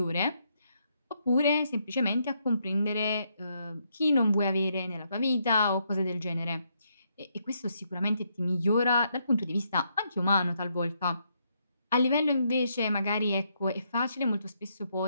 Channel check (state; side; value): inverted; both; correlation -0.76